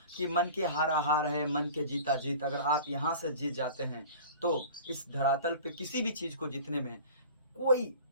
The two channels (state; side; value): inverted; both; correlation -0.40